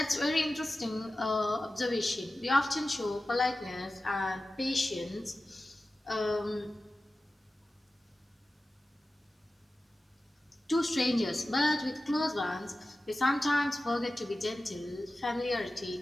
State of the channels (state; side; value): normal; both; correlation 0.95